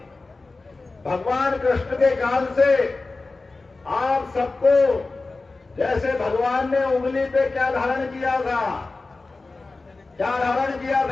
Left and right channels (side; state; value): right; quieter; 3.6 dB